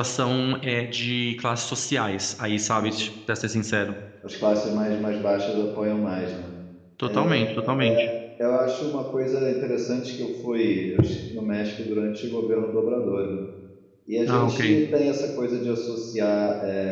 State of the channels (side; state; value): both; identical; correlation 1.00